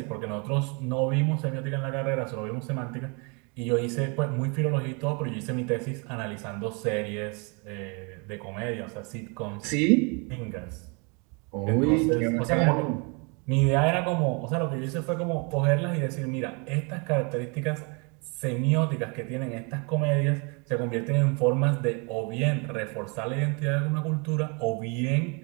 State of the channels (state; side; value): quieter; left; 32.7 dB